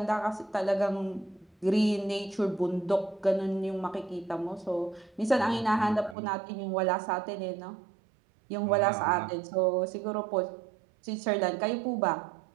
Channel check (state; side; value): drops out; left; at 6.2 s